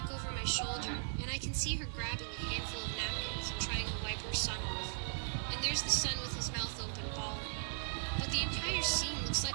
over my shoulder, and I can see her grabbing a handful of napkins and trying to wipe her son off. And there's the son with his mouth open bawling. But the entire scene looks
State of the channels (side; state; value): left; silent; digital silence